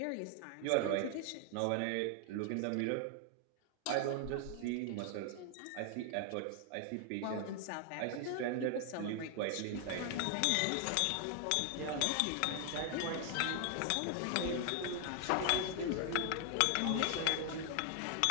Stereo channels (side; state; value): both; different; correlation 0.00